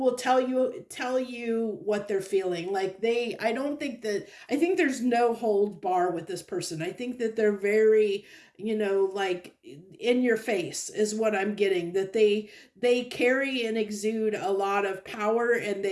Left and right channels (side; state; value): both; identical; correlation 1.00